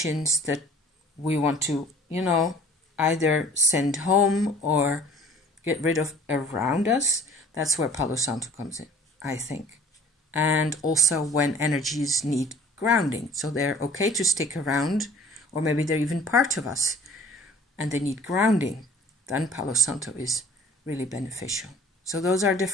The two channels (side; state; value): both; normal; correlation 0.50